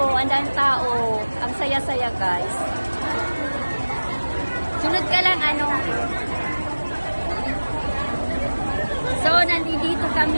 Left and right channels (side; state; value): both; inverted; correlation -1.00